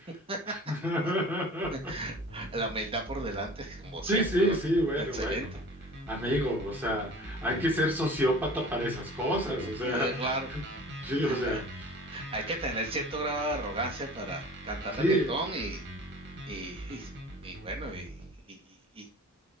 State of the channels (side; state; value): both; normal; correlation 0.43